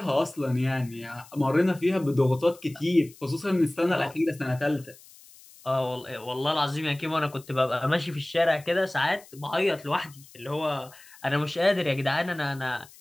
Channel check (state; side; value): noise; left; hiss, 23 dB below the sound